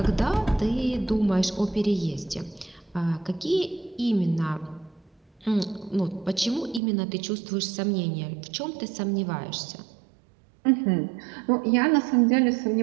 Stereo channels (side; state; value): left; drops out; at 6.8 s